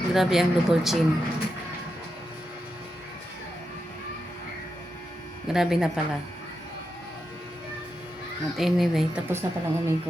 Grabe ang double chin. Grabe na pala. At anyway, tapos na palang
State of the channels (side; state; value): both; normal; correlation 0.87